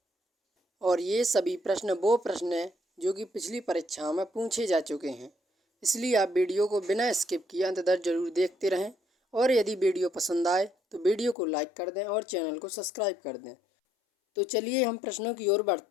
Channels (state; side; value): drops out; right; at 11.4 s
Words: और ये सभी प्रश्न वो प्रश्न हैं जो कि पिछली परीक्षाओं में पूछे जा चुके हैं। इसलिए आप वीडियो को बिना स्किप किए अंत तक जरूर देखते रहें। और यदि वीडियो पसंद आए तो वीडियो को लाइक कर दें और चैनल को सब्सक्राइब कर दें। तो चलिए हम प्रश्नों की ओर